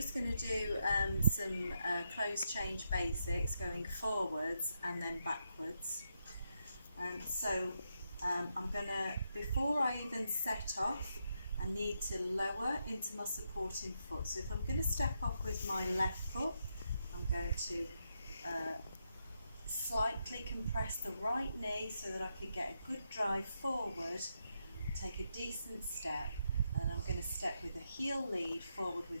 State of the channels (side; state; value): both; inverted; correlation -0.82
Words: going to do some close change basics, going forwards and then backwards. I'm going to, before I even set off, I need to lower into my supporting foot. So if I'm going to step off with my left foot, I'm going to slightly compress the right knee so that I can get a good drive forward, take a decent step, and then I'm going to step with a heel lead forward